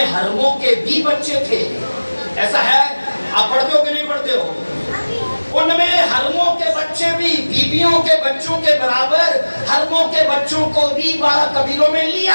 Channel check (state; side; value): inverted; both; correlation -1.00